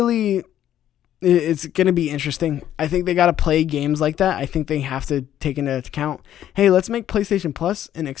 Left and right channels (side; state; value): right; quieter; 11.4 dB